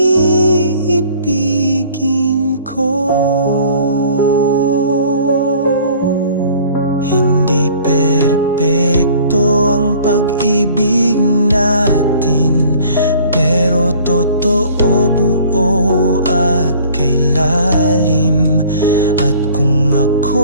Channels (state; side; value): inverted; both; correlation -0.51